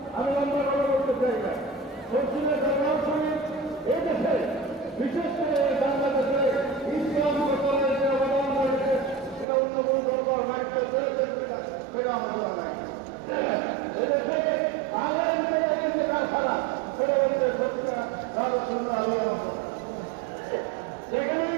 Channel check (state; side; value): drops out; left; at 9.5 s